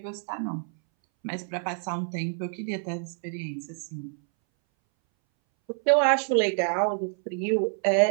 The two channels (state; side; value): silent; left; 60 dB below the other